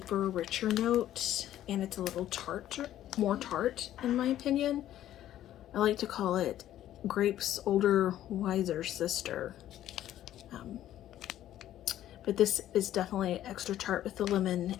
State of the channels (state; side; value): quieter; right; 12.4 dB